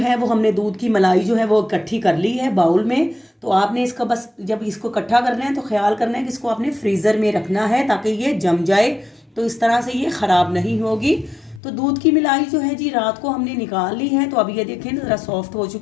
वो हमने दूध की मलाई जो है वो इकट्ठी कर ली है बाउल में। तो आपने इसका बस जब इसको इकट्ठा करना है तो ख्याल करना है कि इसको आपने फ्रीज़र में रखना है ताकि ये जम जाए, तो इस तरह से ये ख़राब नहीं होगी। तो दूध की मलाई जो है जी रात को हमने निकाल ली है। तो अब ये देखें ज़रा सॉफ्ट हो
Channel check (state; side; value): drops out; right; at 11.6 s